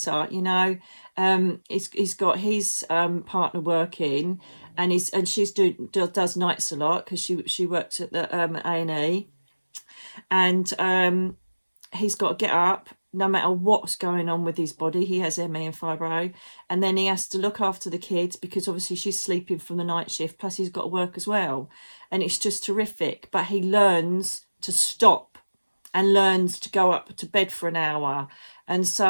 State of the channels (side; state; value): both; inverted; correlation -1.00